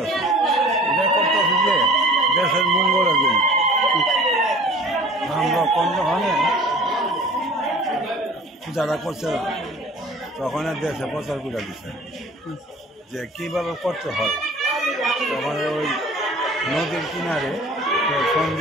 এটা করতেছি যে দেশের মঙ্গলের জন্য। আমরা কোনখানে যারা করছে তখন দেশে প্রচার করে দিচ্ছে যে কীভাবে করতে হয়। তখন ওই নদীর কিনারে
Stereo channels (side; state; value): both; normal; correlation 0.45